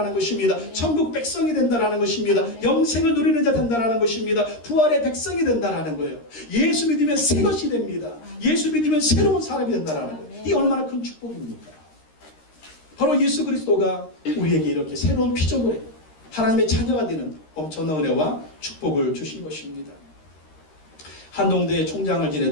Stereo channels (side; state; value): right; late; 13 ms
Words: 것입니다. 천국 백성이 된다는 것입니다. 영생을 누리는 자 된다는 것입니다. 부활의 백성이 된다는 거예요. 예수 믿으면 새 것이 됩니다. 예수 믿으면 새로운 사람이 된다는 거예요. 이 얼마나 큰 축복입니까? 바로 예수 그리스도가 우리에게 이렇게 새로운 피조물에 하나님의 자녀가 되는 엄청난 은혜와 축복을 주신 것입니다. 한동대 총장을